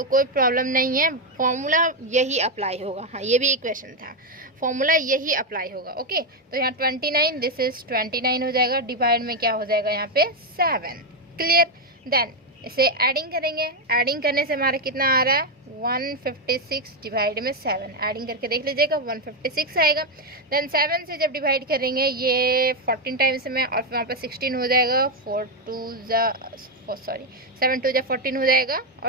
कोई प्रॉब्लम नहीं है, फॉर्मूला यही अप्लाई होगा। हाँ, ये भी एक क्वेश्चन था, फॉर्मूला यही अप्लाई होगा। ओके, तो यहाँ 29, दिस इज 29 हो जाएगा, डिवाइड में क्या हो जाएगा यहाँ पे 7। क्लियर। देन इसे एडिंग करेंगे, एडिंग करने से हमारा कितना आ रहा है, 156 डिवाइड में 7, एडिंग करके देख लीजिएगा 156 आएगा। देन 7 से जब डिवाइड करेंगे ये 14 टाइम्स में, और फिर वहाँ पर 16 हो जाएगा, 7 2 जा 14 हो जाएगा,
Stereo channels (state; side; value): normal; both; correlation 0.05